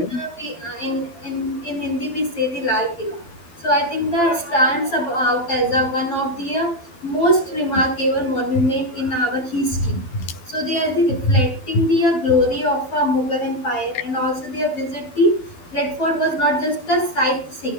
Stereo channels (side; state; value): right; late; 12 ms